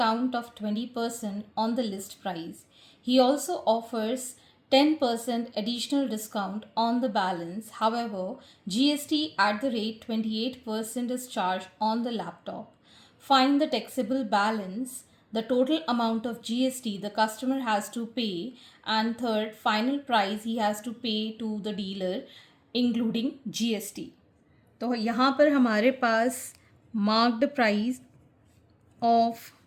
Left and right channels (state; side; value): identical; both; correlation 1.00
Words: of 20% on the list price. He also offers 10% additional discount on the balance. However, GST at the rate 28% is charged on the laptop. Find the taxable balance, the total amount of GST the customer has to pay, and third, final price he has to pay to the dealer including GST. तो यहाँ पर हमारे पास marked price of